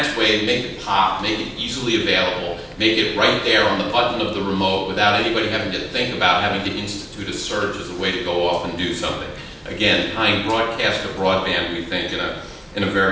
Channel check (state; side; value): identical; both; correlation 1.00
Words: way, make it pop, make it easily available, make it right there on the button of the remote without anybody having to think about having to institute a search as a way to go off and do something. Again, tying broadcast to broadband, we think, in a